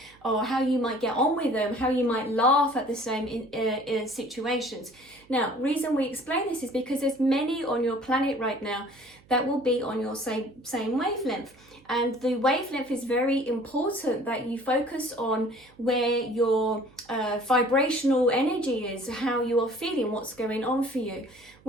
or how you might get on with them, how you might laugh at the same in situations. Now, reason we explain this is because there's many on your planet right now that will be on your same wavelength. And the wavelength is very important that you focus on where your vibrational energy is, how you are feeling, what's going on for you.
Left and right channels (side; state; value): right; noise; hum, 28 dB below the sound